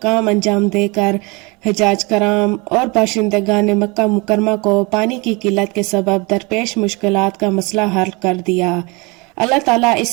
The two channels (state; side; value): quieter; left; 27.2 dB